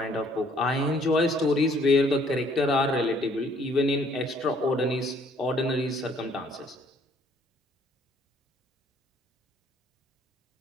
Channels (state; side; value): normal; both; correlation 0.63